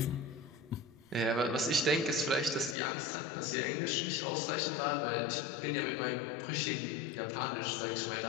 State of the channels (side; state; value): right; drops out; at 2.8 s